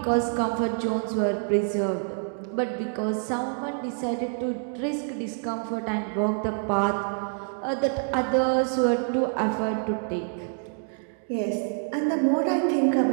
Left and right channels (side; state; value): left; silent; 58 dB below the other